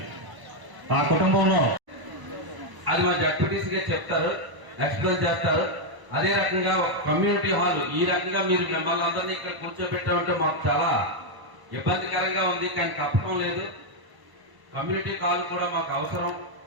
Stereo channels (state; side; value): late; left; 1.0 ms